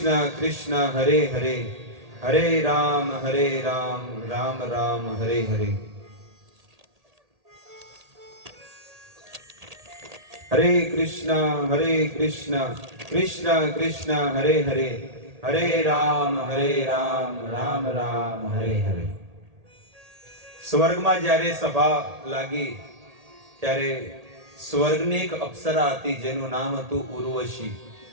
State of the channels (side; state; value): left; late; 1.8 ms